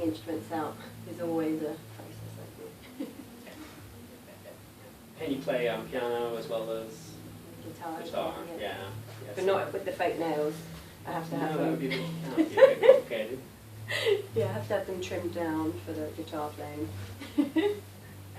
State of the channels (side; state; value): both; identical; correlation 1.00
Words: instruments out is always a process I do. And you play piano as well as Guitar, yeah. Yes. But not with the fake nails. I have to have that them. would be a bit complicated. Yeah, I have to have them trimmed down for the guitar playing.